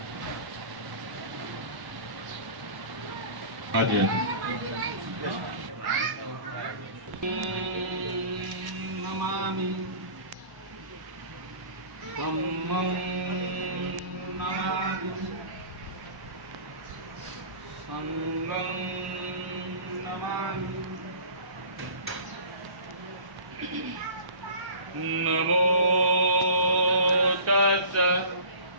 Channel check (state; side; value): late; left; 1.1 ms